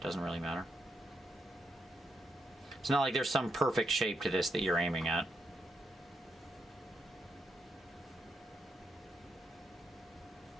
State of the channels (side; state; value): both; normal; correlation 0.80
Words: doesn't really matter. It's not like there's some perfect shape to this that you're aiming at.